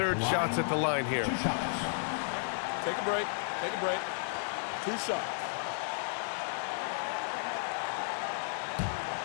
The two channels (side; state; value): right; silent; digital silence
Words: shots at the line here. Take a break. Take a break. 2 shots.